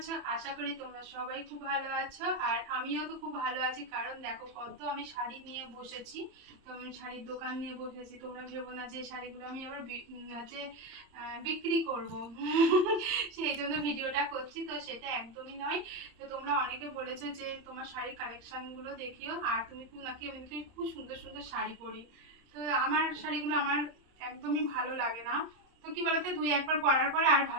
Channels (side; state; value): left; late; 30 ms